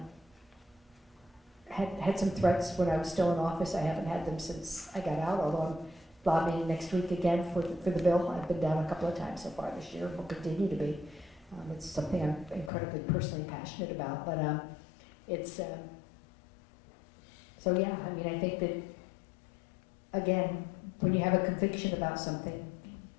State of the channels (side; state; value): right; drops out; at 12.7 s